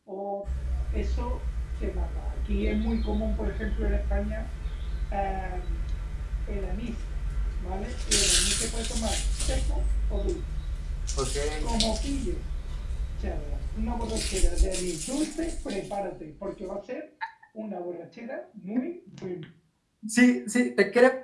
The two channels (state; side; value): identical; both; correlation 1.00